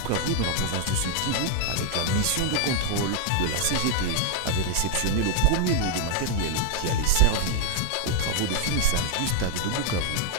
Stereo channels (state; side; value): different; both; correlation 0.00